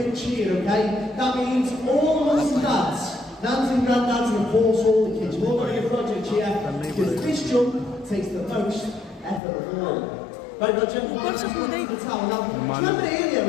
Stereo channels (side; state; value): right; drops out; at 9.4 s